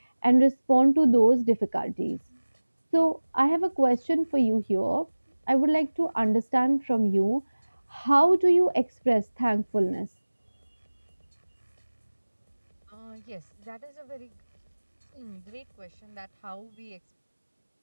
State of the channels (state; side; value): inverted; both; correlation -1.00